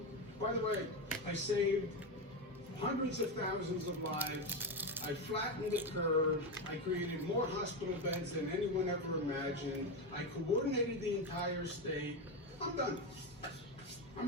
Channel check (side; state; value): both; normal; correlation 0.13